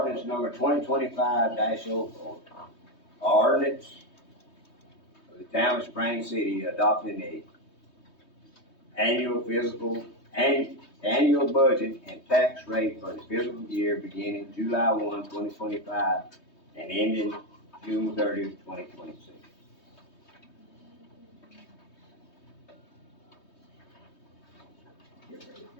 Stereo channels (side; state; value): right; late; 3.2 ms